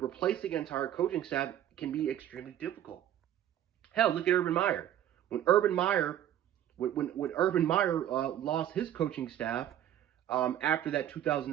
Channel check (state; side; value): quieter; left; 11.3 dB